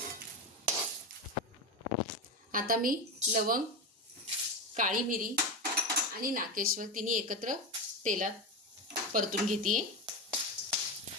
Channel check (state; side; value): normal; both; correlation 0.17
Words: आता मी लवंग, काळी मिरी आणि नाकेश्वर तिन्ही एकत्र तेलात परतून घेते.